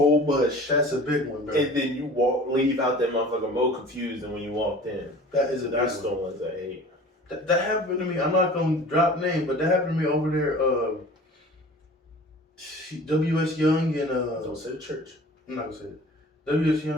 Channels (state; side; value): normal; both; correlation 0.43